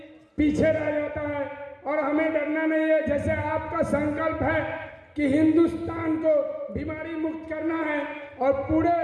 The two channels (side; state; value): both; identical; correlation 1.00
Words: पीछे रह जाता है और हमें डरना नहीं है। जैसे आपका संकल्प है कि हिंदुस्तान को बीमारी मुक्त करना है और पूरे